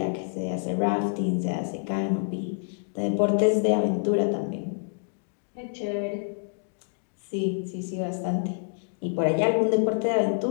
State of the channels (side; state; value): right; silent; digital silence